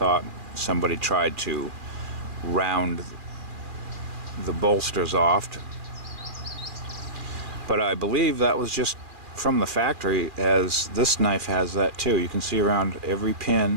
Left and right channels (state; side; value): late; left; 2.4 ms